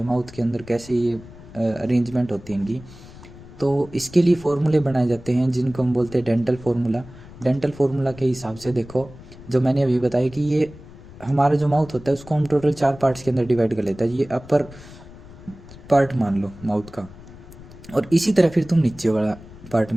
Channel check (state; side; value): noise; left; rumble, 18 dB below the sound